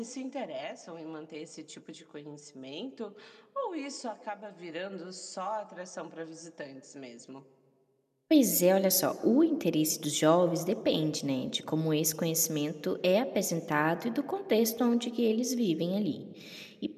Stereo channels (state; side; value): identical; both; correlation 1.00